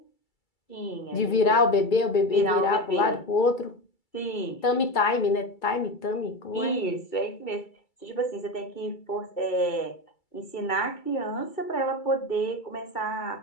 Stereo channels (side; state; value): right; late; 2.3 ms